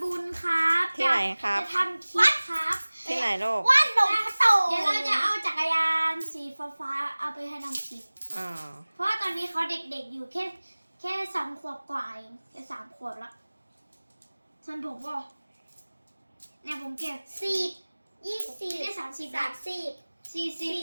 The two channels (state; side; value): inverted; both; correlation -1.00